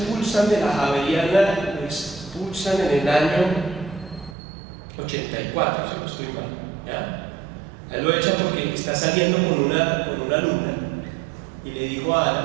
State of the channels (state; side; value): drops out; left; at 4.4 s